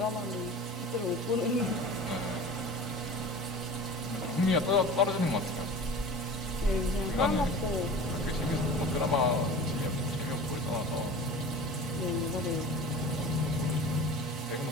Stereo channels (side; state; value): both; normal; correlation 0.37